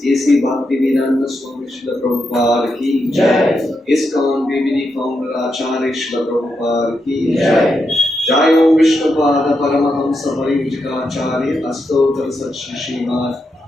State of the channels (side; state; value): both; normal; correlation 0.84